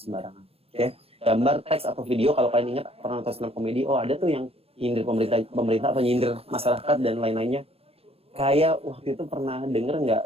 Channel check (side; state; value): left; late; 0.28 ms